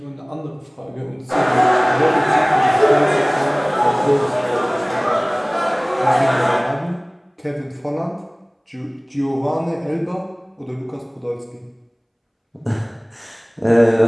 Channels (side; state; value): both; identical; correlation 1.00